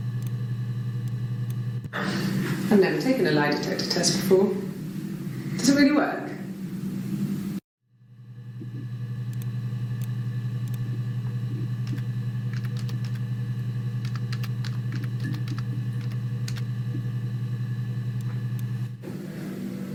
I've never taken a lie detector test before. Does it really work?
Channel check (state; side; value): identical; both; correlation 1.00